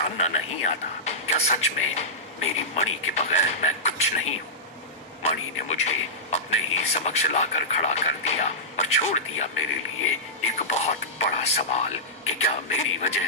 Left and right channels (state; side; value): normal; both; correlation -0.14